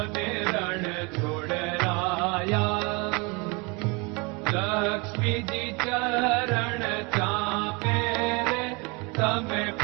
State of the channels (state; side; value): quieter; left; 28.9 dB